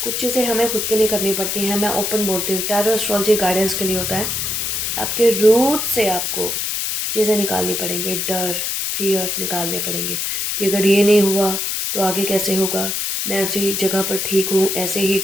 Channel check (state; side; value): noise; left; hiss, 1 dB below the sound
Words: चीज़ें हमें खुद के लिए करनी पड़ती हैं, मैं ओपन बोलती हूँ, टैरो एस्ट्रोलॉजी गाइडेंस के लिए होता है। आपके रूट से आपको चीज़ें निकालनी पड़ेंगी, डर फियर निकालने पड़ेंगे कि अगर ये नहीं हुआ तो आगे कैसे होगा, मैं उसी जगह पर ठीक हूँ, ऐसे ही